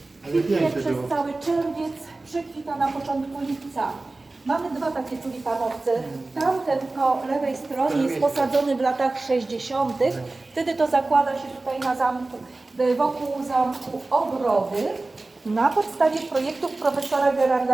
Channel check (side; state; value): left; quieter; 3.2 dB